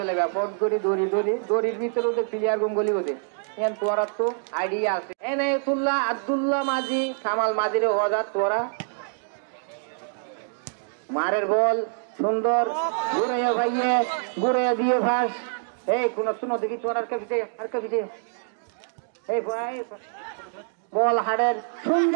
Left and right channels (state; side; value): silent; left; digital silence